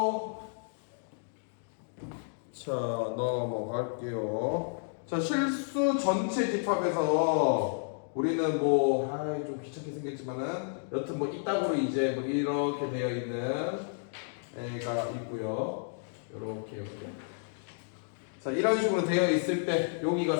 자 넘어갈게요. 자, 실수 전체 집합에서 우리는 뭐 좀 귀찮게 생겼지만은 여튼 뭐 이따구로 이제 뭐 이렇게 되어 있는 애가 있고요. 요렇게. 자, 이런 식으로 되어 있을 때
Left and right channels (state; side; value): silent; right; digital silence